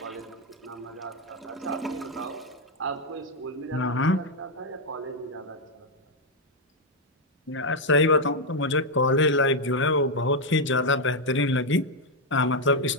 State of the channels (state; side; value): normal; both; correlation 0.01